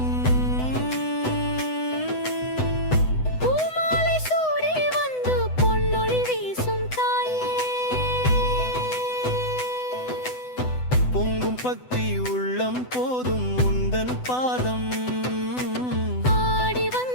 பொங்கும் பக்தி உள்ளம் போதும் உந்தன் பாதம். ஆடி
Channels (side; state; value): right; late; 8.0 ms